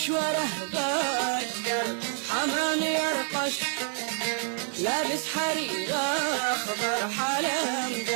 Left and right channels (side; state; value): left; silent; 59 dB below the other